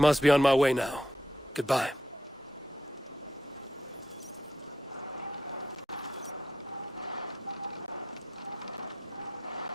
be on my way now. Goodbye.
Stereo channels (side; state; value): both; normal; correlation 0.80